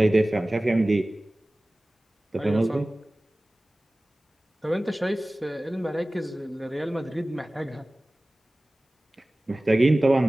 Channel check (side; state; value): both; normal; correlation 0.98